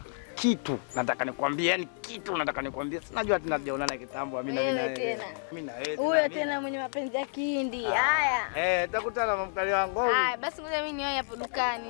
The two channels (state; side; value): silent; right; 58 dB below the other